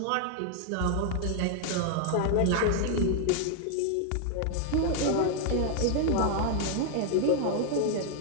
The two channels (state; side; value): different; both; correlation 0.00